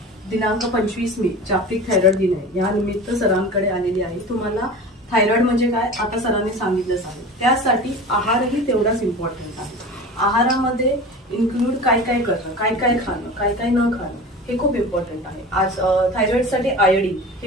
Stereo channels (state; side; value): normal; both; correlation 0.35